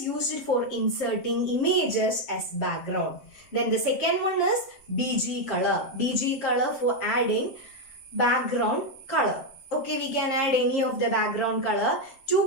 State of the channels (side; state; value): right; late; 7.6 ms